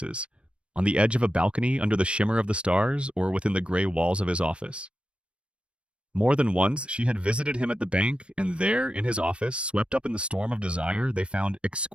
on the edge of a balcony under the shimmer of the stars or within the gray walls of his office. More than once, she had visited him at the bank, and there, in his office, swept up in the storm of desire, they found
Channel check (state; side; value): late; left; 0.059 ms